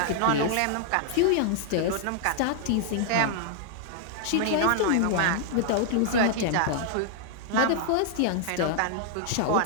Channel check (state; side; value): different; both; correlation -0.01